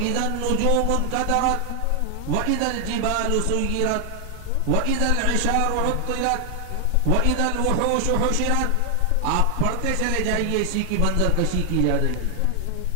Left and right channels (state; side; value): different; both; correlation 0.00